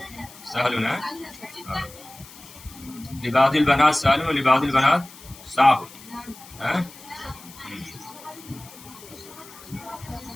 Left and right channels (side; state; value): left; noise; hiss, 19 dB below the sound